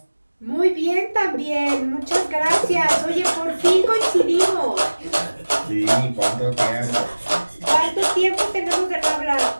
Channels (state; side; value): inverted; both; correlation -1.00